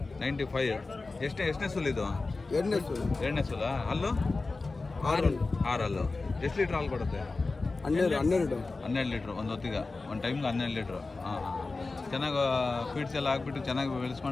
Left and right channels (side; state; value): right; quieter; 3.6 dB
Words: ಎಷ್ಟನೇ ಸುಲಿದು? ಎರಡನೇ ಸುಲ. ಅಲ್ಲು 6. ಎಷ್ಟು ಲೀಟ್ರ್ ಹಾಲು ಕೊಡುತ್ತೆ? 12 ಲೀಟ್ರ್ ಒಂದು ಹೊತ್ತಿಗೆ, ಒಂದು ಟೈಮ್ಗೆ 12 ಲೀಟ್ರ್. ಹಾಂ. ಚೆನ್ನಾಗಿ ಫೀಡ್ಸ್ ಎಲ್ಲ ಹಾಕ್ಬಿಟ್ಟು ಚೆನ್ನಾಗಿ